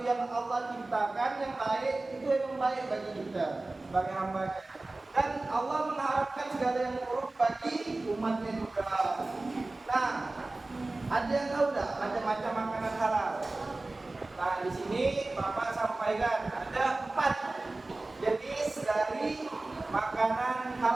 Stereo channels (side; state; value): left; quieter; 3.0 dB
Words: yang Allah ciptakan yang baik itu memang baik bagi kita sebagai hamba-Nya, dan Allah mengharapkan segala yang buruk bagi umatnya juga. Nah, ada yang tahu tidak macam-macam makanan halal? Nah, di sini Bapak sampaikan ada 4 jenis dari makanan